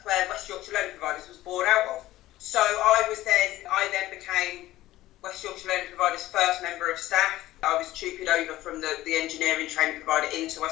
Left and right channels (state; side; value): quieter; right; 15.9 dB